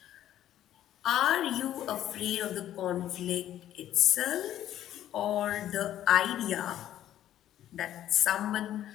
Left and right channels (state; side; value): quieter; right; 12.1 dB